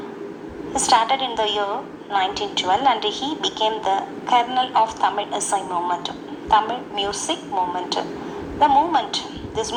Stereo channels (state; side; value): identical; both; correlation 1.00